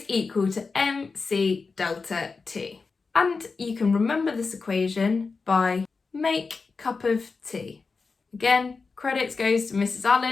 equal to mc delta T. And you can remember this equation by make cup of tea. Again, credits goes to Mrs.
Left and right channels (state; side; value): quieter; right; 4.5 dB